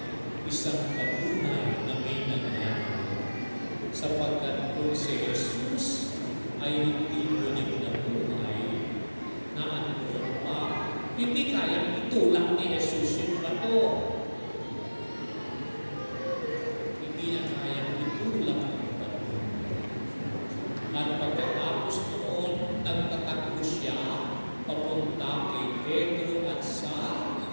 Isang patunay na may nangyari. Sapagkat kung si Jesus ay hindi ulit na buhay, na ano pa, hindi kayang itulak ni Jesus yung bato. Hindi niya kayang itulak yung bato. At pagkatapos noon, nagtatakbo siya papunta kay Pedro at sa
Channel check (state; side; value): inverted; both; correlation -1.00